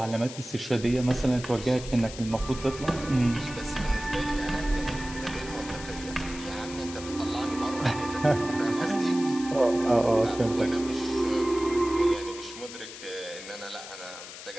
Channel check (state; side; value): noise; left; hiss, 13 dB below the sound